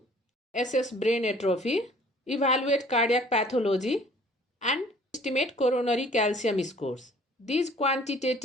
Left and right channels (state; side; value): normal; both; correlation 0.54